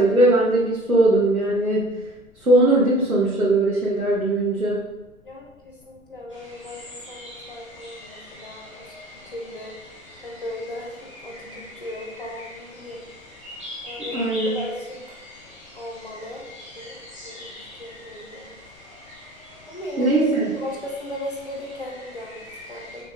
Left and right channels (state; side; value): noise; left; rumble, 27 dB below the sound